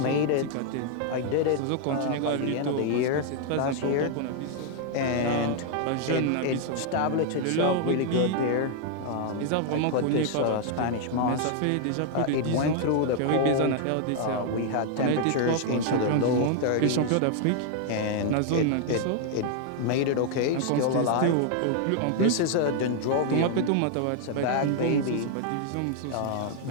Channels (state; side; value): different; both; correlation 0.00